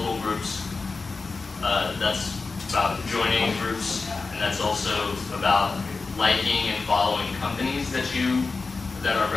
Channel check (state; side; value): quieter; right; 4.1 dB